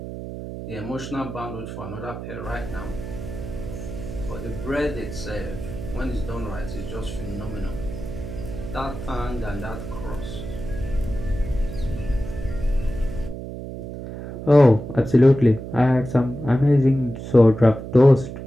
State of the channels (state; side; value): noise; right; hum, 9 dB below the sound